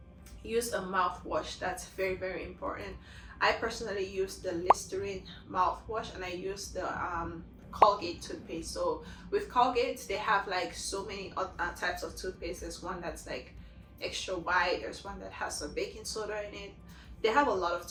use a mouthwash. That's very, very important. I personally use the Listerine mouthwash, and I use the Colgate toothpaste. So with Colgate, they have like so many types of toothpaste. There's one that's like extra white, there's one that has some baking soda in it. They have a lot of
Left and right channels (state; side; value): identical; both; correlation 1.00